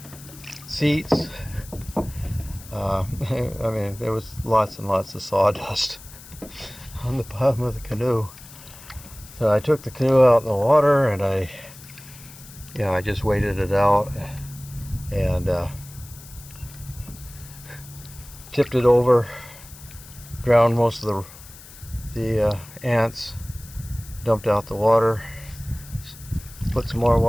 seats. I mean, there was lots and lots of sawdust on the bottom of the canoe. So I took the canoe out in the water, and I just waited it out and tipped it over, drowned most of the ants, dumped out the water, put some more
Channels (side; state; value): left; noise; hiss, 18 dB below the sound